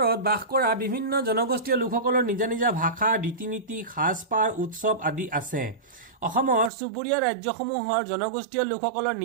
বাস কৰা বিভিন্ন জনগোষ্ঠীয় লোকসকলৰ নিজা নিজা ভাষা, ৰীতি নীতি, সাজপাৰ, উৎসৱ আদি আছে। অসমৰ চুবুৰীয়া ৰাজ্যসমূহৰ জনগোষ্ঠীয় লোকসকলৰ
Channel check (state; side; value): drops out; left; at 6.7 s